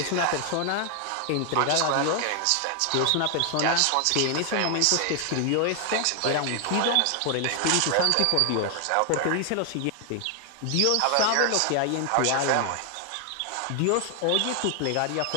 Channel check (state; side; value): different; both; correlation 0.00